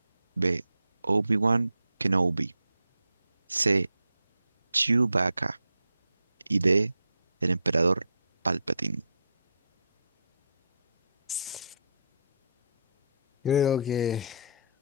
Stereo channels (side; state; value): both; inverted; correlation -0.72